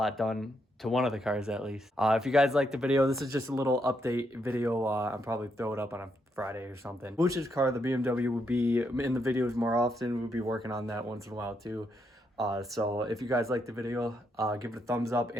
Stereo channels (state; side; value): normal; both; correlation 0.78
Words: done to one of the cars at least. If you guys liked the video, this is just a little update video. I'll probably throw it up on a Friday or something. Bush's car, the BMW, would be in the videos more often. We'll be working on that once in a while too. So if you guys like the video, give it a thumbs up